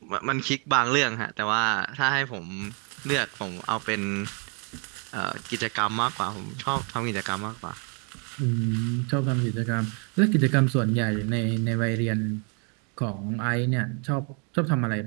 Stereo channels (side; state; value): left; quieter; 37.0 dB